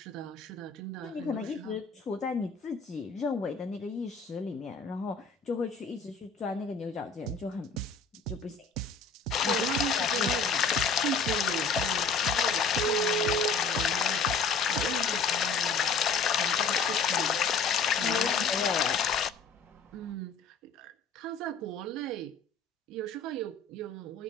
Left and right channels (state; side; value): quieter; right; 4.3 dB